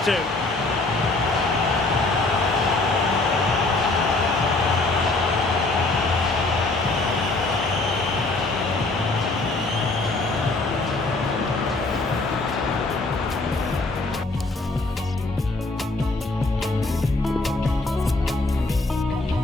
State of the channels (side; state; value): right; quieter; 3.1 dB